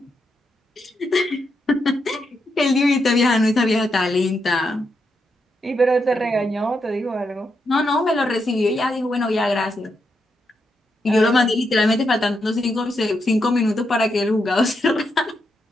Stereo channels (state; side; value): normal; both; correlation 0.82